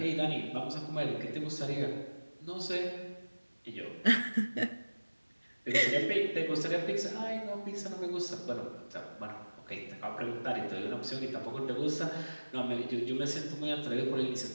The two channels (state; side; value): inverted; both; correlation -1.00